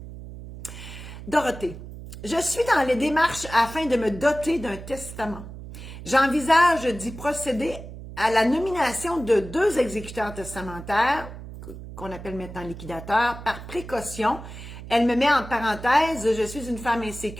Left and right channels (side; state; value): right; noise; hum, 12 dB below the sound